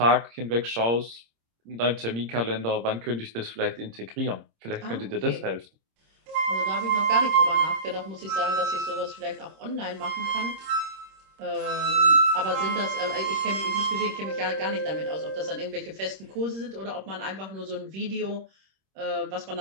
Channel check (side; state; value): left; late; 26 ms